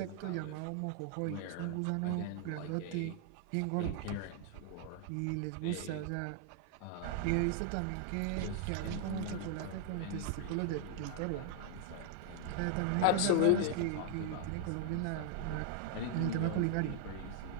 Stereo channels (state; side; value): different; both; correlation 0.00